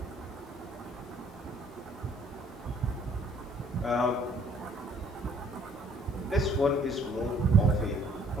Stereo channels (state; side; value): normal; both; correlation 0.60